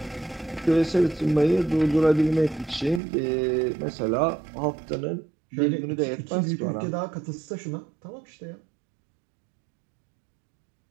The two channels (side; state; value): left; drops out; at 3.0 s